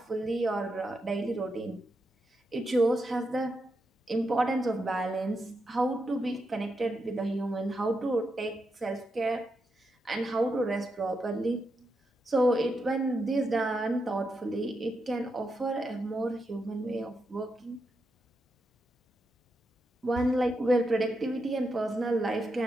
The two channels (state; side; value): normal; both; correlation 0.85